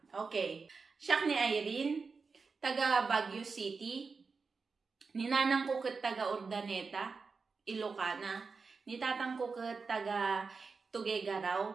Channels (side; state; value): left; quieter; 4.7 dB